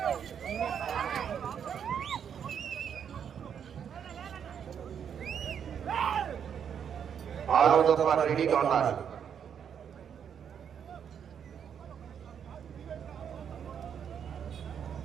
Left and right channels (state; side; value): quieter; left; 8.0 dB